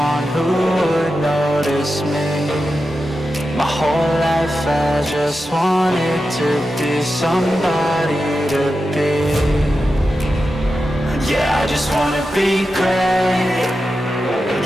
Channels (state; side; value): normal; both; correlation 0.91